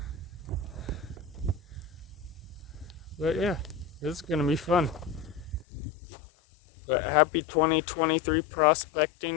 But yeah, this is gonna be fun. But happy 2023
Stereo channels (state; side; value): drops out; right; at 5.7 s